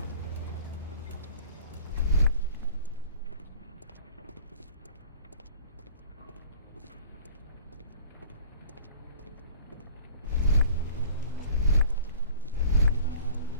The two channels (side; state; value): both; inverted; correlation -0.46